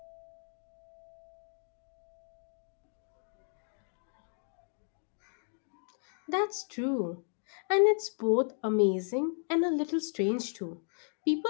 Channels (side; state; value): right; silent; 55 dB below the other